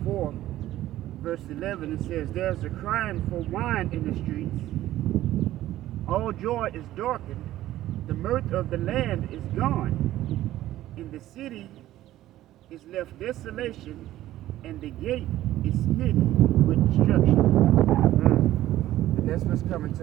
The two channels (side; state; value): left; quieter; 14.3 dB